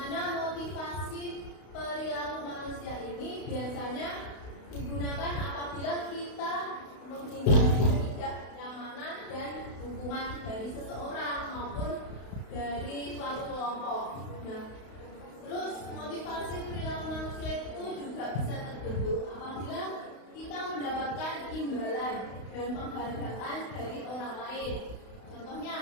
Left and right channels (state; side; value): late; right; 32 ms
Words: motivasi perilaku manusia ini biasanya digunakan apabila kita menghindari ketidaknyamanan dan hukuman dari seseorang maupun dari suatu kelompok. Nah, terus motivasi perilaku manusia itu juga bisa terbentuk apabila kita mendapatkan imbalan dan penghargaan dari orang lain. Contohnya,